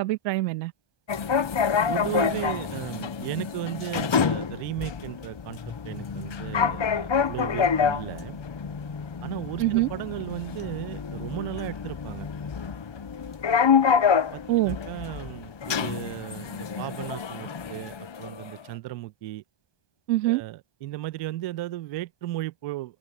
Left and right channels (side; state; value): right; late; 1.2 ms